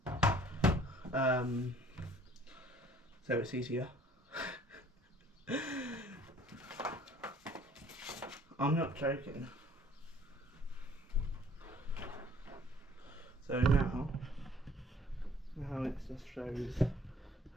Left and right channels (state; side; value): normal; both; correlation 0.55